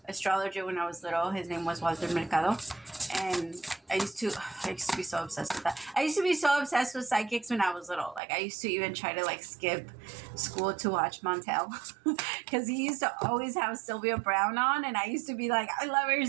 astrologer when I was little. His name was Walter Mercado. And I used to be so obsessed with that. I used to be so obsessed with psychics when I was little. Like, I used to even try to, like, skip school to watch Montel. Because he used to always have Sylvia Brown on. And I used to be like, I love her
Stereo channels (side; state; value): left; drops out; at 8.2 s